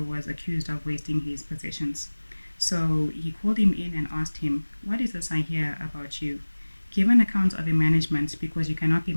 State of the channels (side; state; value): both; inverted; correlation -1.00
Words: was accused of wasting his possessions. So he called him in and asked him, what is this I hear about you? Give an account of your management, because you cannot be